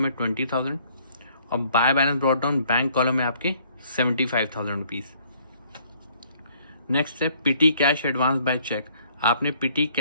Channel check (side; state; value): both; inverted; correlation -0.62